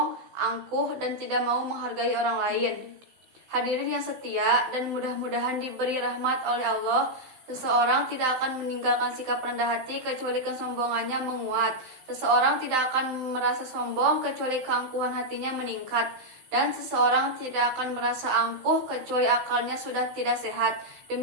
angkuh, dan tidak mau menghargai orang lain. Hadirin yang setia dan mudah-mudahan diberi rahmat oleh Allah, seseorang tidak akan meninggalkan sikap rendah hati kecuali kesombongannya menguat. Seseorang tidak akan merasa sombong kecuali keangkuhan hatinya meningkat. Dan seseorang tidak akan merasa angkuh kecuali akalnya sudah tidak sehat.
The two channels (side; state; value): left; late; 16 ms